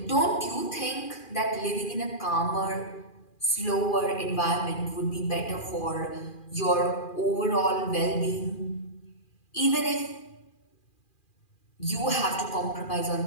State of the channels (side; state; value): right; late; 2.4 ms